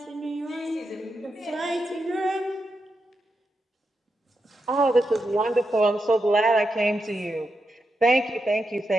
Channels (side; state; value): both; normal; correlation 0.86